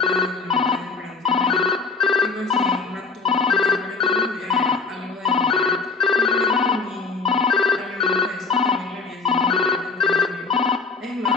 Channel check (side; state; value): right; quieter; 4.6 dB